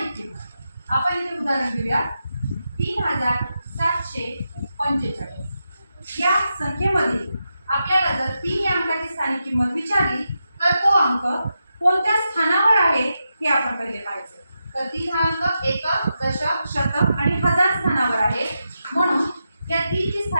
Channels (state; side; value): inverted; both; correlation -0.87